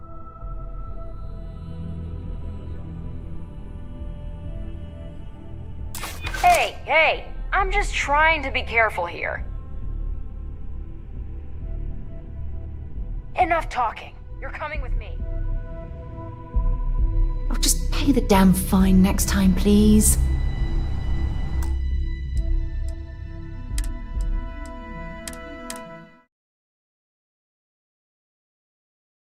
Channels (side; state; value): both; identical; correlation 1.00